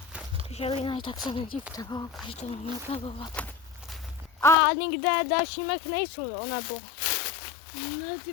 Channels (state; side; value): drops out; right; at 4.5 s